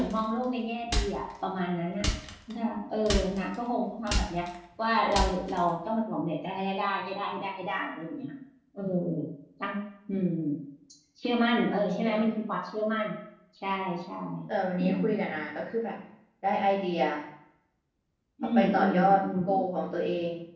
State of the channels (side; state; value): both; identical; correlation 1.00